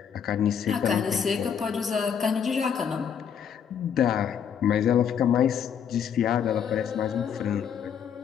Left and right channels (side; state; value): right; quieter; 7.9 dB